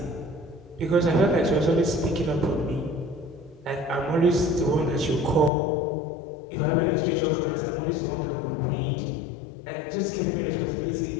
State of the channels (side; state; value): right; drops out; at 5.5 s